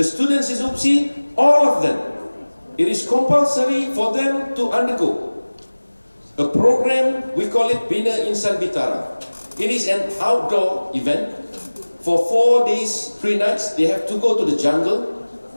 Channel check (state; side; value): inverted; both; correlation -1.00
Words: students in Upsi, all of them, it is compulsory for them to undergo a program, we call it Bina Insan Bitara. It is an outdoor event. For 4 days, 3 nights, they have to go to the jungle